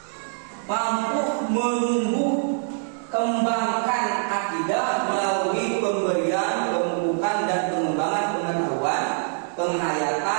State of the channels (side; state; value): left; silent; 58 dB below the other